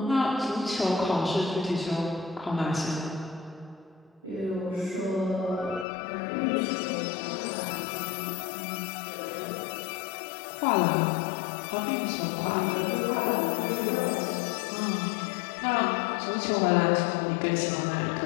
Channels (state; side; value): drops out; right; at 5.9 s